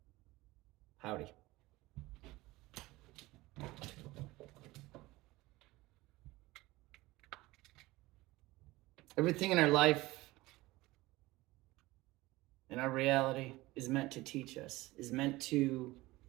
Howdy. Everything in our life, in our reality, is meant to teach us, is meant to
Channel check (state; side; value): quieter; left; 19.7 dB